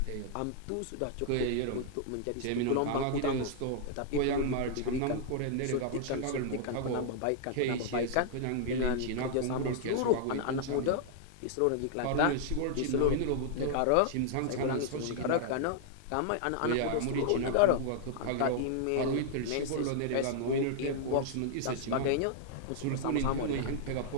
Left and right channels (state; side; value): different; both; correlation -0.01